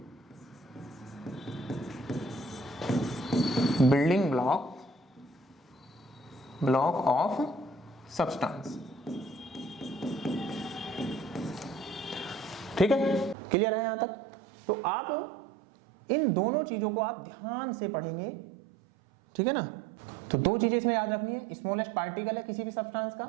ब्लॉक ऑफ सब्सटेंस। ठीक है, क्लियर है यहां तक? तो आप इन दोनों चीजों को आप ध्यान से पढ़ेंगे, ठीक है ना। तो दो चीजें इसमें याद रखनी है, स्मॉलेस्ट पार्टिकल है किसी भी सब्सटेंस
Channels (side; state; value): left; drops out; at 13.4 s